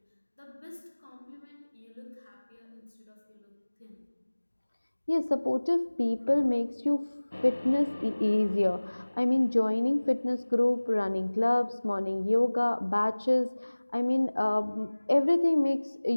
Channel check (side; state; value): both; inverted; correlation -1.00